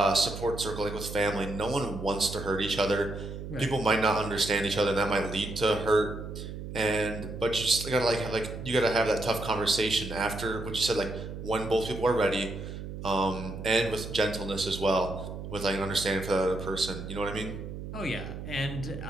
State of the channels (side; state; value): right; noise; hum, 9 dB below the sound